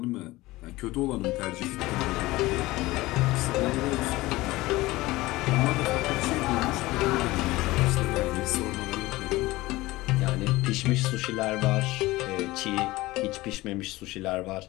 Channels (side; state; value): right; quieter; 19.3 dB